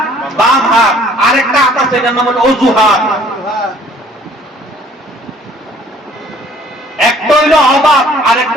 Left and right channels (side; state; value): both; normal; correlation 0.56